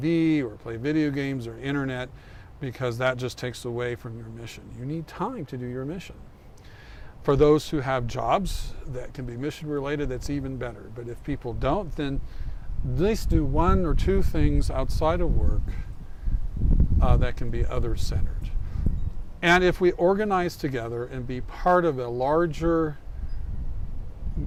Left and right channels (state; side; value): identical; both; correlation 1.00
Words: or play video games or internet, because that just takes away from your mission. You need time to do your mission. For those who have jobs that can be mission related, that's even better. But if people don't, then at least do one or two things outside of work that can be other-centered. And if we organize together and be part of a larger